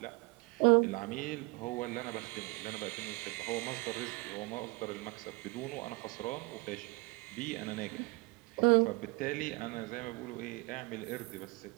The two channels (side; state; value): left; quieter; 25.9 dB